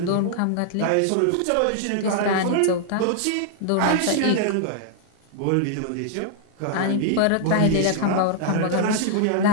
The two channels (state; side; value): different; both; correlation 0.00